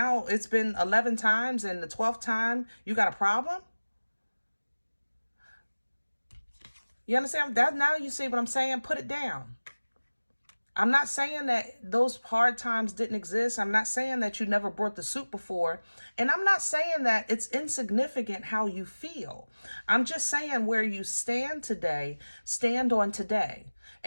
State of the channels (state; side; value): inverted; both; correlation -1.00